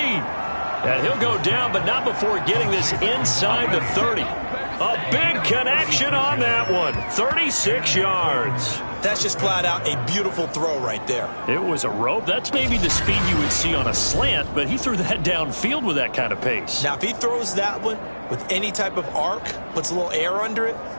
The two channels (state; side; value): inverted; both; correlation -1.00